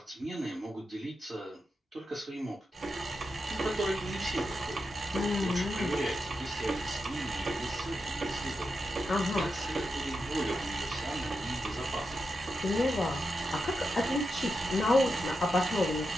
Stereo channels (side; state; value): both; normal; correlation 0.87